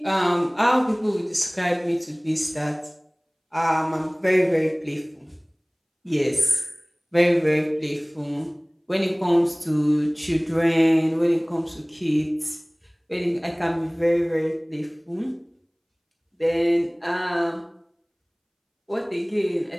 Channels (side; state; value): both; identical; correlation 1.00